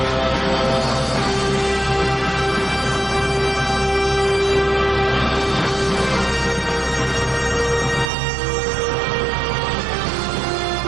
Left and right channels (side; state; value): left; drops out; at 8.1 s